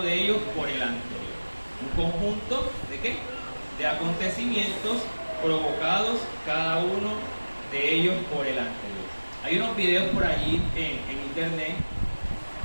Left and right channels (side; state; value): both; inverted; correlation -1.00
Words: de ellos por el anterior. Un conjunto ¿de qué? De acontecimientos provocados cada uno de ellos por el anterior. Hay unos videos por allí en internet